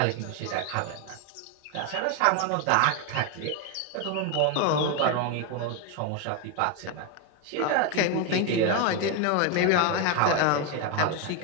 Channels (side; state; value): both; different; correlation 0.02